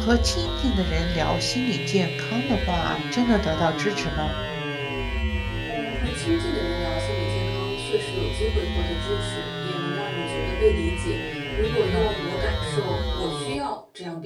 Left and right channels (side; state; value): both; identical; correlation 1.00